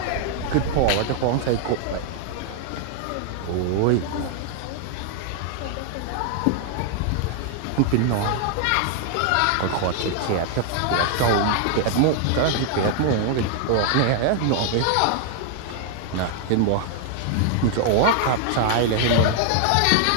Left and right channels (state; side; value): different; both; correlation 0.00